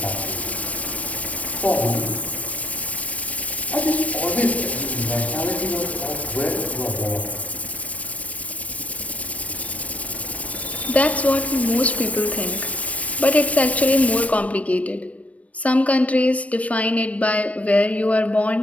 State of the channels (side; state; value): right; late; 0.066 ms